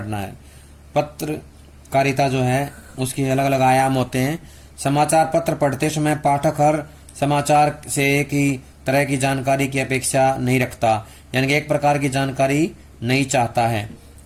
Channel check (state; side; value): identical; both; correlation 1.00